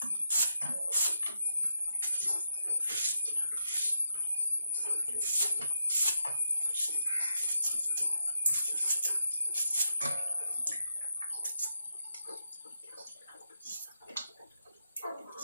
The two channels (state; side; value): inverted; both; correlation -0.83